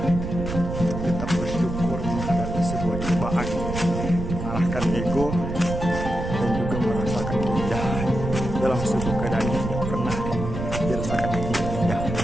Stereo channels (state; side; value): noise; right; rumble, 5 dB below the sound